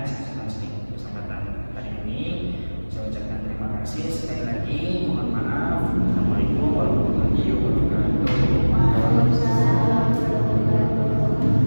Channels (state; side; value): inverted; both; correlation -1.00